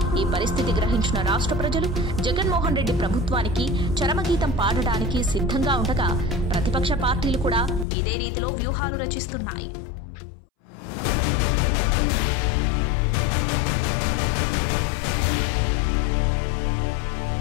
ఈ పరిస్థితి గ్రహించిన రాష్ట్ర ప్రజలు జగన్మోహన్ రెడ్డి ప్రభుత్వానికి చరమగీతం పాడడానికి సిద్ధంగా ఉండగా ప్రతిపక్ష పార్టీలు కూడా ఇదే రీతిలో వ్యూహాలు రచిస్తున్నాయి.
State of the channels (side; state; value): right; drops out; at 7.9 s